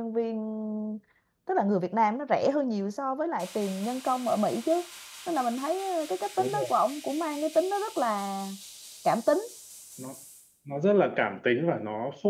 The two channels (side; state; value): both; identical; correlation 1.00